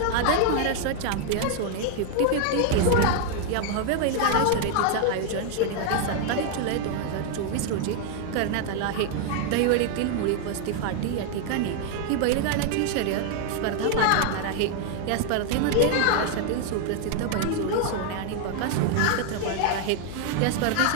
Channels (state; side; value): different; both; correlation 0.00